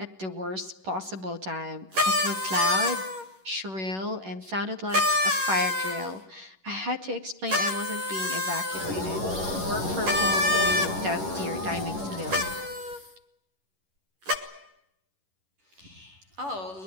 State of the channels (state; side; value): late; left; 11 ms